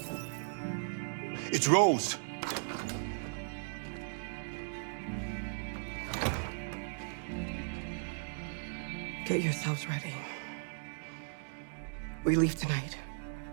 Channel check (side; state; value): left; silent; digital silence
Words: It's Rose. Get yourselves ready. We leave tonight.